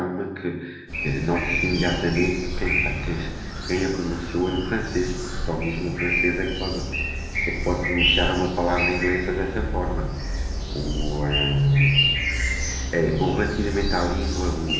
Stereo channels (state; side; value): identical; both; correlation 1.00